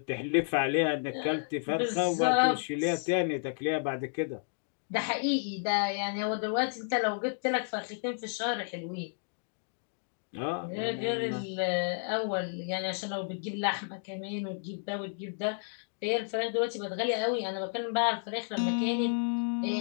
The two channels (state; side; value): silent; right; digital silence